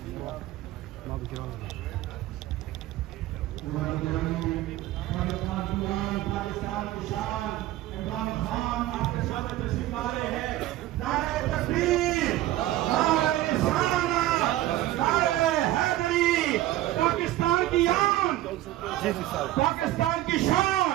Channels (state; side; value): quieter; left; 15.1 dB